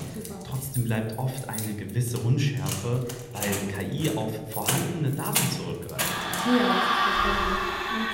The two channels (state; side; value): identical; both; correlation 1.00